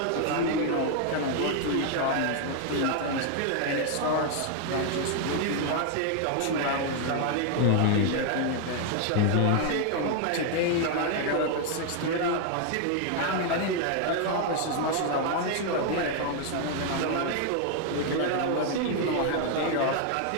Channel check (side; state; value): both; different; correlation 0.00